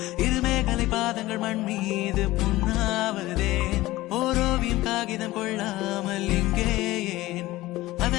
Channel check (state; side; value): quieter; right; 17.9 dB